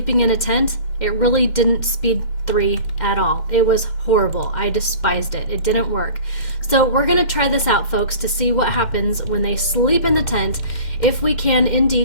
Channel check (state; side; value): late; right; 2.1 ms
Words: in a tent, it really didn't speed 3 at all. It was horrible. I despised it. It didn't work. So we're going to try this out, folks, to see what happens when they sleep in the tent, if we can